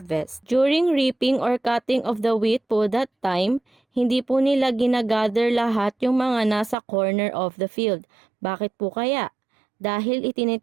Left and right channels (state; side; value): drops out; left; at 6.8 s